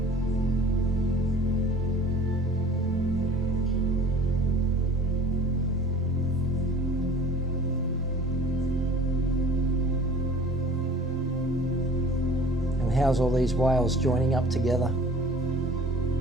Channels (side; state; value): both; normal; correlation 0.46